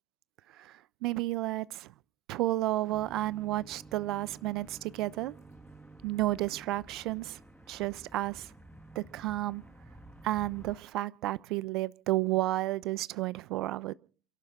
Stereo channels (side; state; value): left; quieter; 15.8 dB